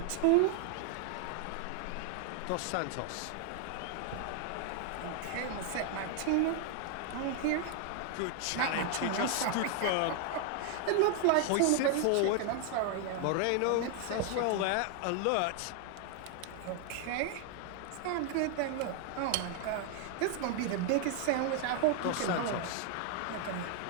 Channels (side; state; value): both; different; correlation 0.00